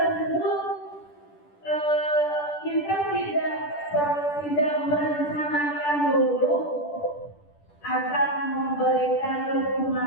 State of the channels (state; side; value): late; right; 10 ms